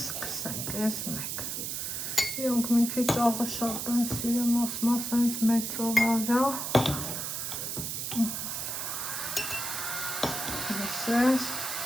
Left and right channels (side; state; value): right; noise; hiss, 3 dB below the sound